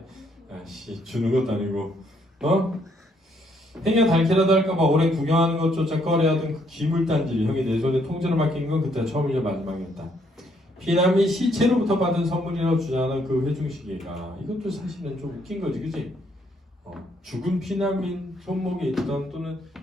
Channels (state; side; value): normal; both; correlation 0.70